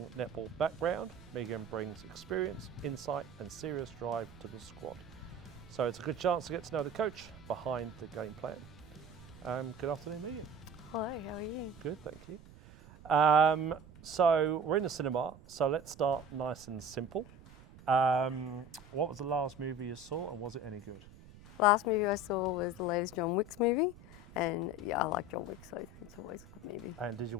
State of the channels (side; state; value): right; noise; rumble, 20 dB below the sound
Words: netball background, Megan brings experience, insight and serious drive to the squad. So it's a good chance to get to know the coach behind the game plan. Good afternoon, Megan. Hello, how are you? Good, thank you. So we're in the cinema, so let's start nice and simple. What was the last movie you saw and was it any good? Last movie I saw was the latest John Wick's movie, and yeah, I like John Wick, so it's always a good movie. And did you